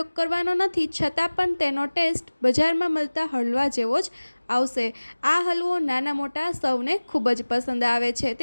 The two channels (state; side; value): inverted; both; correlation -1.00